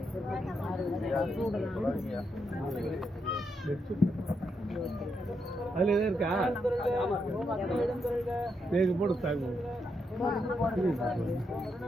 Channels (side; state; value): both; normal; correlation 0.81